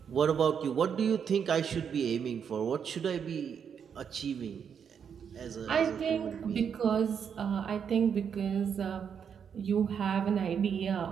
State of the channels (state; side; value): quieter; left; 7.4 dB